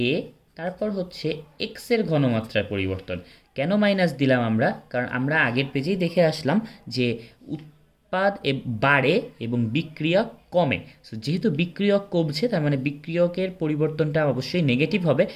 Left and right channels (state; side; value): identical; both; correlation 1.00